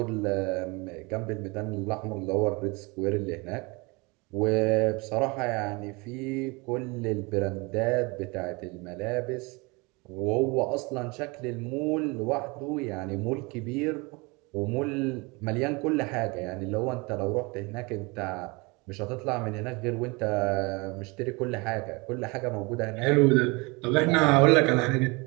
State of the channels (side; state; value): left; quieter; 26.9 dB